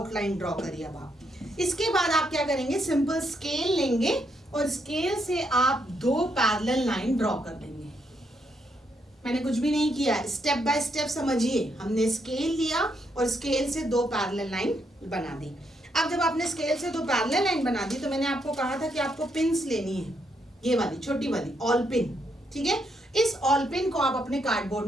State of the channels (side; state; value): both; normal; correlation 0.77